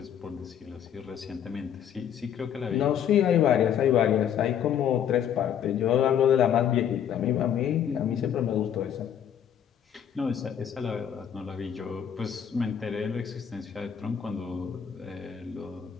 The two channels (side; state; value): right; quieter; 9.0 dB